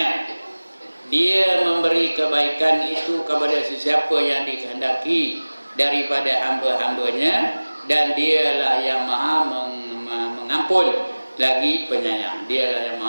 Dia memberi kebaikan itu kepada sesiapa yang dikehendaki daripada hamba-hambanya, dan dialah yang maha mengampun lagi penyayang. Dialah yang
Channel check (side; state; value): both; inverted; correlation -1.00